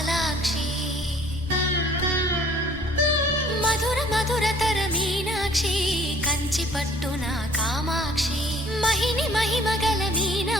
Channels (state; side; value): normal; both; correlation 0.56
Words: మధుర మధురతర మీనాక్షి కంచి పట్టున కామాక్షి మహిని మహిమగల